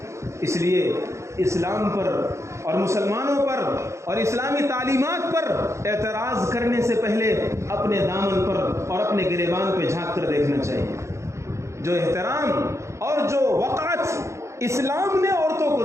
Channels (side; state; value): left; late; 0.14 ms